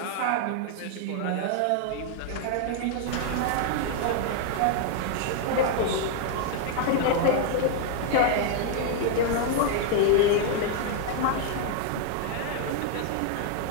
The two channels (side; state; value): both; different; correlation 0.00